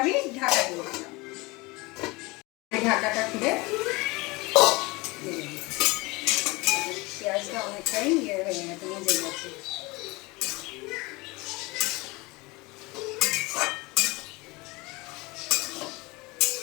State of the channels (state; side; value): quieter; right; 24.2 dB